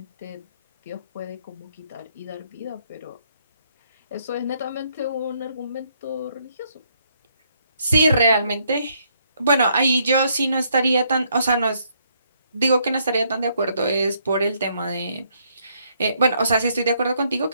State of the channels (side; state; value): both; inverted; correlation -0.71